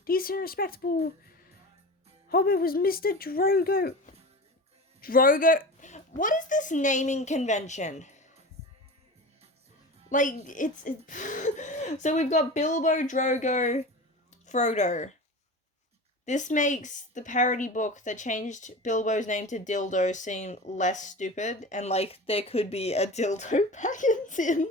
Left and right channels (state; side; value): normal; both; correlation 0.32